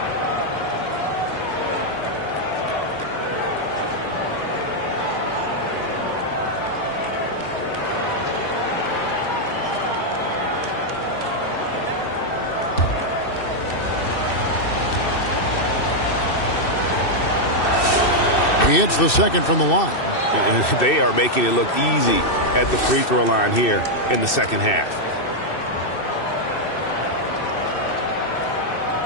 He hits the second from the line. And they are making it look easy at the free throw line here in the second half.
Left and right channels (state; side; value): late; right; 2.6 ms